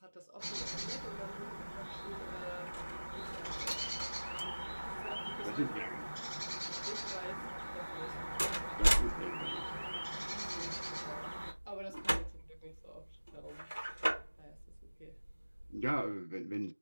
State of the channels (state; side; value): inverted; both; correlation -1.00